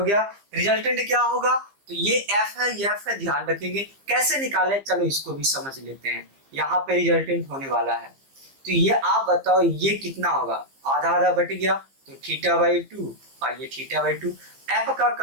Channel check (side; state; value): left; late; 15 ms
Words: गया? रिजल्टेंट क्या होगा, तो ये F है, ये F है, ध्यान रखेंगे। कैसे निकाले, चलो इसको भी समझ लेते हैं। यहाँ पे रिजल्टेंट होने वाला है, तो ये आप बताओ ये कितना होगा, आधा आधा बट गया तो थीटा बाई 2 और ये थीटा बाई 2। F का